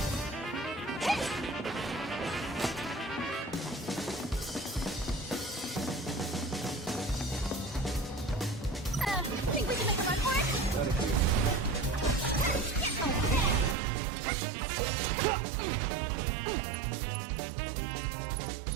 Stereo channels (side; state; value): left; drops out; at 13.8 s